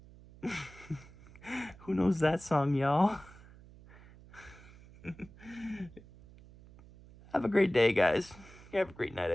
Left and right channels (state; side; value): noise; right; hum, 21 dB below the sound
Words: Who knows that song, y'all? Have a great day, guys. Have a great night,